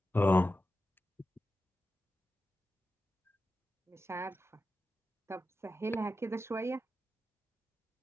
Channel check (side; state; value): both; normal; correlation 0.91